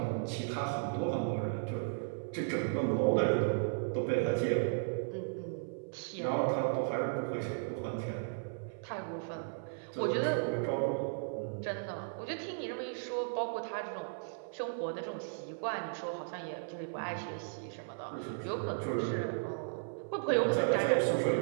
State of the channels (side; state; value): left; silent; 54 dB below the other